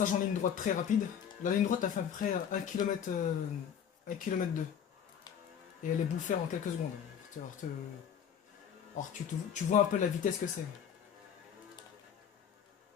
en ligne droite très rapides. La ligne droite a fait à peu près 1 km, 1 km 2. Et elle est bouffée en quelques secondes. Alors, tu vois un peu la vitesse que c'est.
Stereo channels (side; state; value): right; quieter; 8.2 dB